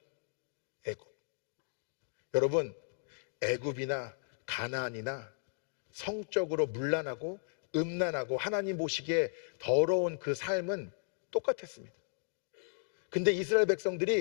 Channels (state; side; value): silent; right; digital silence